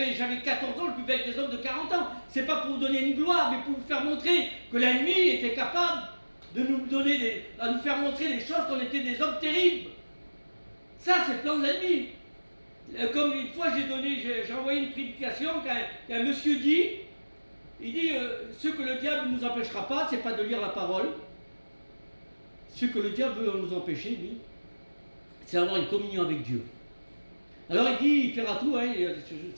14 ans, je buvais avec des hommes de 40 ans. C'est pas pour vous donner une gloire, mais pour vous faire montrer que la nuit était capable de nous donner à nous faire montrer des choses qu'on était des hommes terribles. Ça, c'est le plan de l'ennemi. Comme une fois j'ai envoyé une prédication qu'un monsieur dit, il dit ce que le diable ne nous empêchera pas, c'est pas de lire la parole. Ce que le diable veut nous empêcher, lui, c'est d'avoir une communion avec Dieu. Alors il dit, il fera tout,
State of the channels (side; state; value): both; inverted; correlation -1.00